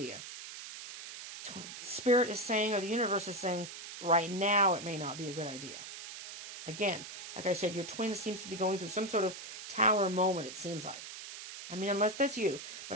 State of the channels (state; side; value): noise; right; hiss, 10 dB below the sound